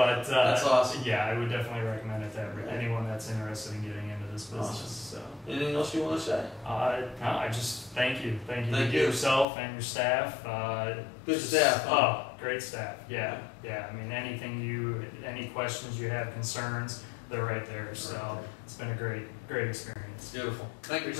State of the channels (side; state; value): right; drops out; at 9.5 s